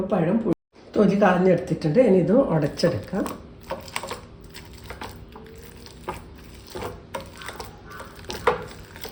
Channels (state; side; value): identical; both; correlation 1.00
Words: പഴം തൊലി കളഞ്ഞെടുത്തിട്ടുണ്ട്. ഇനി ഇത് ഉടച്ചെടുക്കാം.